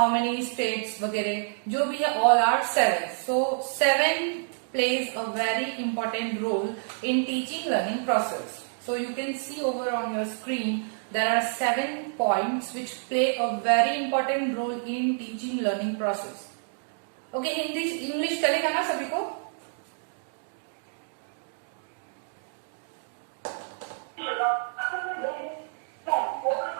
many states वगैरह जो भी है, all are 7. So 7 plays a very important role in teaching learning process. So you can see over on your screen there are 7 points which play a very important role in teaching learning process. Okay, Hindi English चलेगा ना सभी को?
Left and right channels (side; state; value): left; silent; digital silence